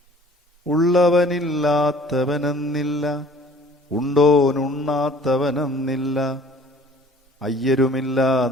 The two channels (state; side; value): normal; both; correlation 0.51